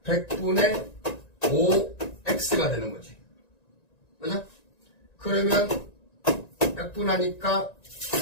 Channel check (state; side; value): late; right; 1.9 ms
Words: 100분의 5x가 되는 거지. 그죠? 그러면 약분하니까